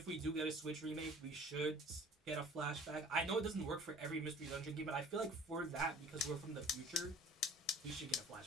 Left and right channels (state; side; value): normal; both; correlation 0.47